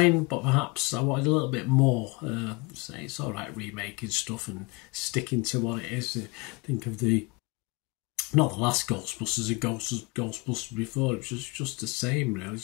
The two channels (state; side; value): quieter; right; 27.0 dB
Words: but perhaps I wanted a little bit more. Say it's all right remaking stuff and sticking to what it is. Think of not the last Ghostbusters, Ghostbusters before. It was just the same, really.